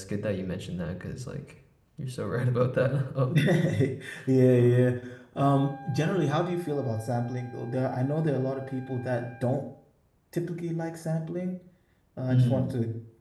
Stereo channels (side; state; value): both; identical; correlation 1.00